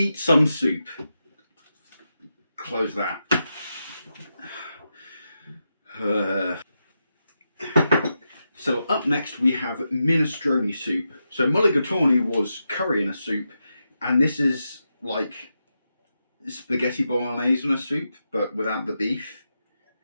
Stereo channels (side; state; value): both; inverted; correlation -0.87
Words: some soup. Close that. So up next we have minestrone soup. So mulligatawny was curry in a soup, and this is like spaghetti bolognese in a soup, but without the beef.